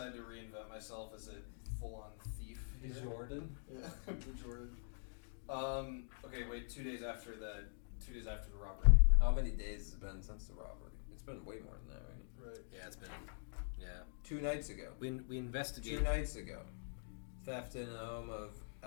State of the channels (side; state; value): right; silent; digital silence